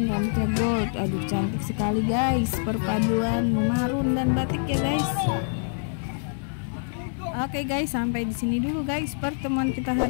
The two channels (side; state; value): right; silent; digital silence